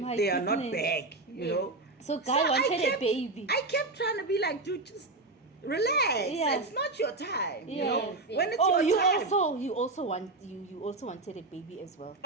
They are not goodness. back, you Yes. know? So guy So I wanted a kept- baby. I kept trying to be like, dude, just relax. Yeah. It's not your time. You Yeah. know? Yes, yes. When it's Oh, your time. you also wanted a baby as well.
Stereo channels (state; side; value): quieter; left; 3.3 dB